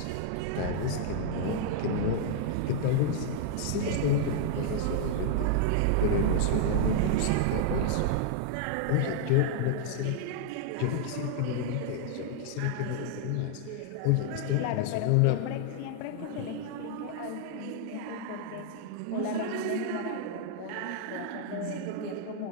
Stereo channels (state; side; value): different; both; correlation -0.01